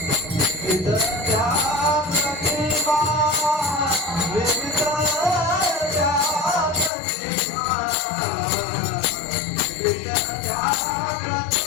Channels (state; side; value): drops out; right; at 6.9 s